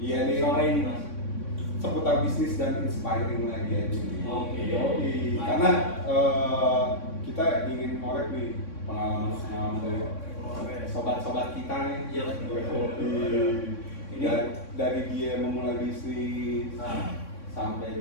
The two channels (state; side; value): late; right; 3.6 ms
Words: nih. Sore ini Mas. Seputar bisnis dan inspiring lagi aja nih. Oke. Karena kita ingin ngorek nih pengalaman dari sobat-sobat kita nih. Iya. Ini dari dia memulai bisnis sampai